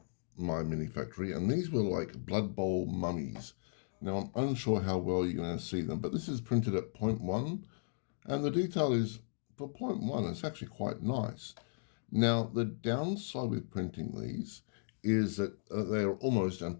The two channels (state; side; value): silent; right; digital silence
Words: my mini factory, and these were like Blood Bowl mummies. Now I'm unsure how well you're going to see them, but this is printed at 0.1, and the detail is, for 0.1, it's actually quite nice. Now the downside with printing these is that they are almost, and